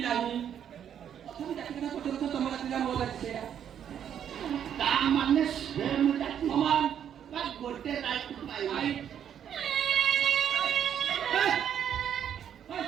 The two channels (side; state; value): left; quieter; 9.2 dB